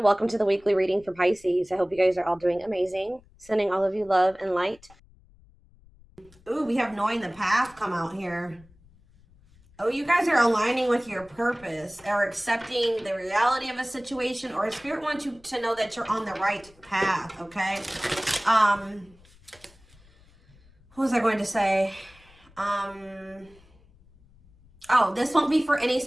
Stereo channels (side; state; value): left; noise; rumble, 27 dB below the sound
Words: welcome to the weekly reading for Pisces. I hope you guys are all doing amazing. Sending all of you love and light. Ooh, we have knowing the path come out here. Oh, you guys are aligning with your purpose or accepting the reality of a situation, or Spirit wants you to know that you're on the right path, okay? What was I going to say? Oh, this won't be for any